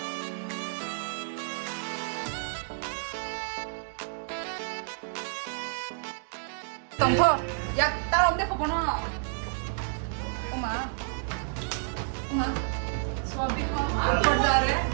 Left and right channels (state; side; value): silent; left; digital silence